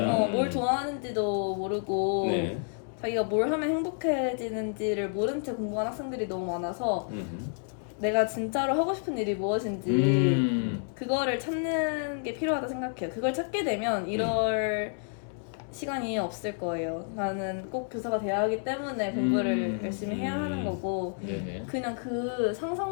뭘 좋아하는지도 모르고 네. 자기가 뭘 하면 행복해지는지를 모른 채 공부하는 학생들이 너무 많아서 내가 진짜로 하고 싶은 일이 무엇인지 그거를 찾는 게 필요하다 생각해요. 그걸 찾게 되면 이럴 시간이 없을 거예요. 나는 꼭 교사가 돼야 하기 때문에 공부를 열심히 해야 하는 거고 네네. 그냥 그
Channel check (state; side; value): silent; right; 58 dB below the other